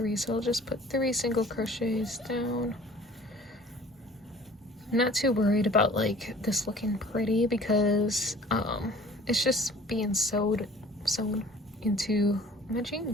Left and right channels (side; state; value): both; normal; correlation 0.49